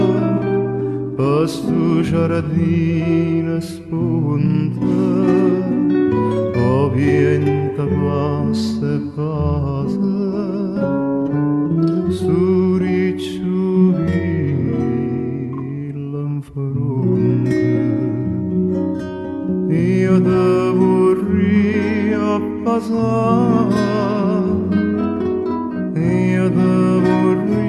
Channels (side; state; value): both; identical; correlation 1.00